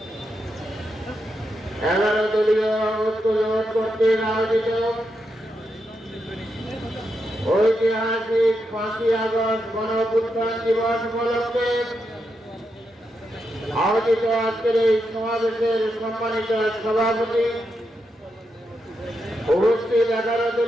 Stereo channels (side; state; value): both; normal; correlation 0.84